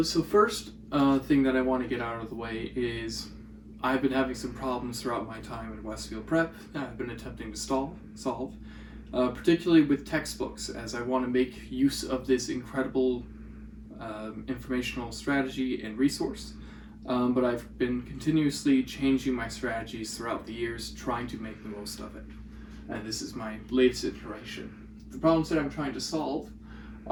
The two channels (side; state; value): both; identical; correlation 1.00